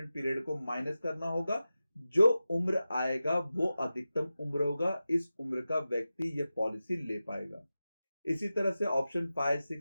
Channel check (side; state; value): both; inverted; correlation -0.93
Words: पीरियड को माइनस करना होगा। जो उम्र आएगा वो अधिकतम उम्र होगा, इस उम्र का व्यक्ति यह पॉलिसी ले पाएगा। इसी तरह से ऑप्शन 5 6